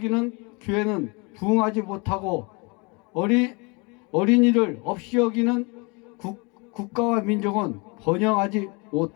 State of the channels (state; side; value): quieter; right; 29.7 dB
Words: 교회는 부흥하지 못하고 어린이를 없이 여기는 국가와 민족은 번영하지